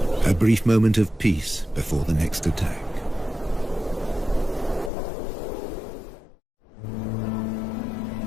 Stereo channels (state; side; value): drops out; right; at 4.9 s